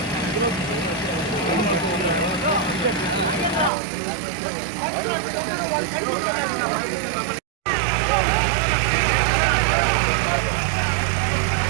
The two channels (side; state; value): left; drops out; at 3.7 s